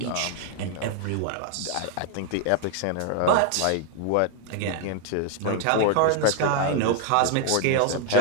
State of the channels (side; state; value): both; different; correlation 0.00